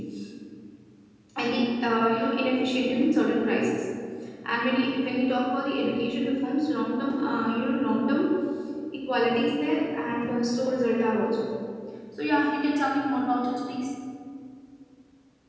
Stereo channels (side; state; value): both; identical; correlation 1.00